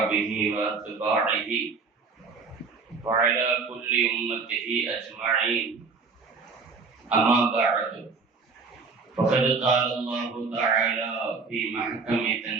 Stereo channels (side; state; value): left; quieter; 4.7 dB